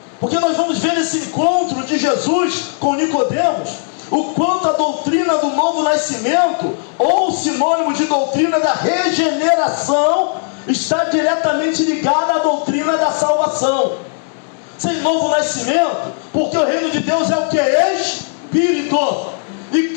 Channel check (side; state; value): right; silent; digital silence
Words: porque nós vamos ver esse encontro de Jesus com Nicodemos, o quanto a doutrina do novo nascimento, ou sinônimo de doutrina da regeneração, está diretamente ligada à doutrina da salvação. Sem novo nascimento, porque o reino de Deus é o que? Espírito. E